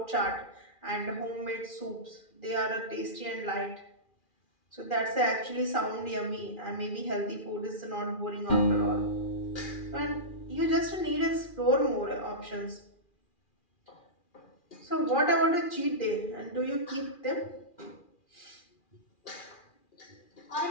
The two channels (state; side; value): late; right; 2.4 ms